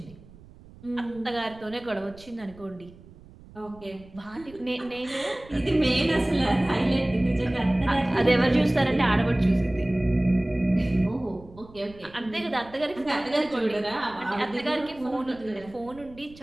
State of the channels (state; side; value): noise; right; rumble, 22 dB below the sound